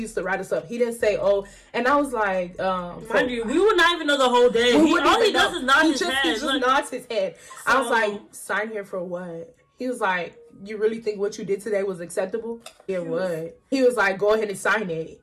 used to write us up. He didn't say, oh, and I was like, mind you, we would not even know the whole day. All he does is nod his head. He just nods his head. So, I was like, sign here for what? He was like, you really think what you did today was acceptable? Yeah, what? He was like, go ahead and sign it.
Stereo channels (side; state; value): both; identical; correlation 1.00